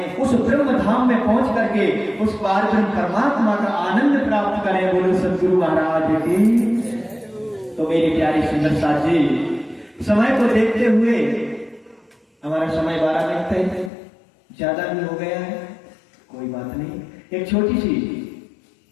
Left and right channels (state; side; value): drops out; right; at 13.9 s